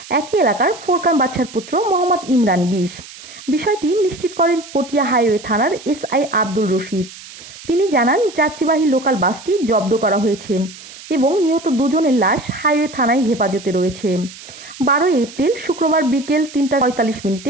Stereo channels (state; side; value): noise; right; hiss, 17 dB below the sound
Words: একই এলাকার ফোরকান বাদশার পুত্র মোহাম্মদ ইমরান 20। বিষয়টি নিশ্চিত করেন পটিয়া হাইওয়ে থানার এসআই আব্দুল রশিদ। তিনি জানান, যাত্রীবাহী লোকাল বাসটি জব্দ করা হয়েছে এবং নিহত দুজনের লাশ হাইওয়ে থানায় হেফাজতে রয়েছে। 12 এপ্রিল শুক্রবার বিকেল